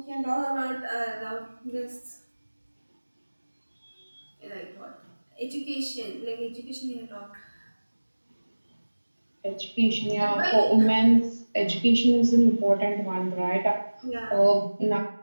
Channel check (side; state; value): both; inverted; correlation -1.00